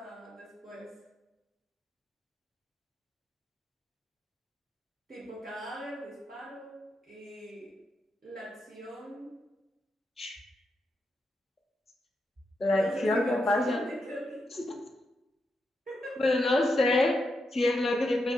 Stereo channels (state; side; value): normal; both; correlation 0.84